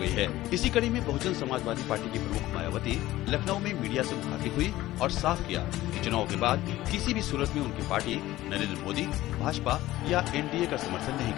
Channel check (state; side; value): quieter; right; 16.1 dB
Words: गई है। इसी कड़ी में बहुजन समाजवादी पार्टी की प्रमुख मायावती लखनऊ में मीडिया से मुखातिब हुई और साफ किया कि चुनाव के बाद किसी भी सूरत में उनकी पार्टी नरेंद्र मोदी, भाजपा या एनडीए का समर्थन नहीं